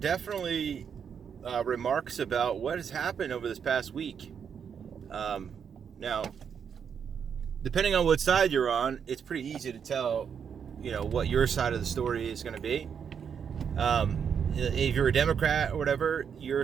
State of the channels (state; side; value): quieter; left; 7.3 dB